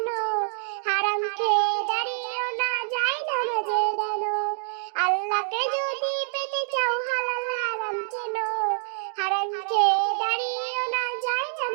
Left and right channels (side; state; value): left; silent; digital silence